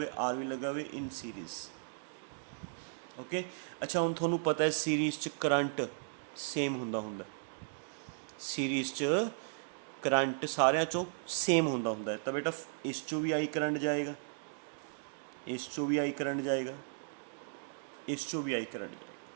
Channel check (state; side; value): silent; left; digital silence